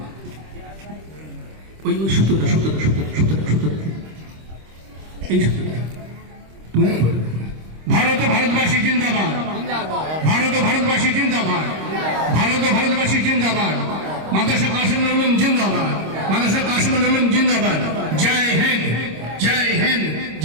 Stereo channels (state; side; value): late; left; 26 ms